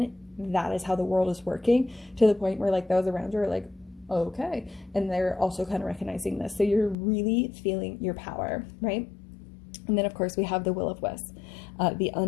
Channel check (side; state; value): right; drops out; at 7.0 s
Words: that is how the world is working, to the point where like those around you are like, okay, and they're also kind of recognizing this. So you're really feeling your power, right? And then of course we have the will of wisp, the